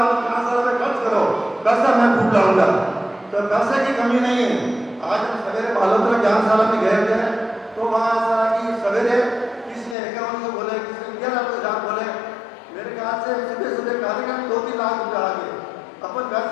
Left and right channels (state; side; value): drops out; right; at 10.0 s